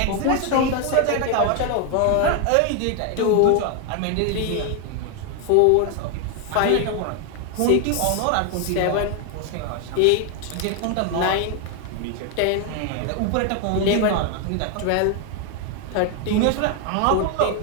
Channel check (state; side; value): different; both; correlation 0.01